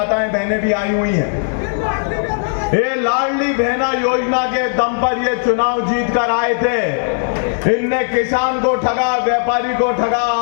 बहनें भी आई हुई हैं। ये लाडली बहना योजना के दम पर ये चुनाव जीत कर आए थे। इनने किसान को ठगा, व्यापारी को ठगा,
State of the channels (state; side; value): silent; right; 67 dB below the other